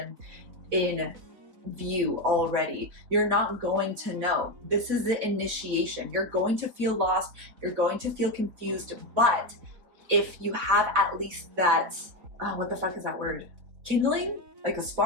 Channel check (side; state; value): left; late; 4.1 ms